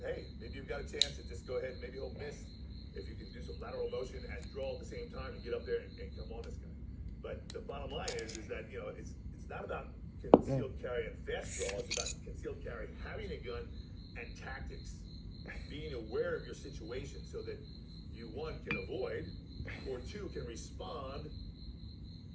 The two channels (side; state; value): both; identical; correlation 1.00